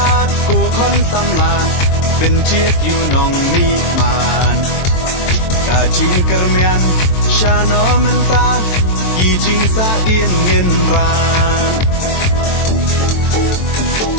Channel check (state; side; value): late; right; 23 ms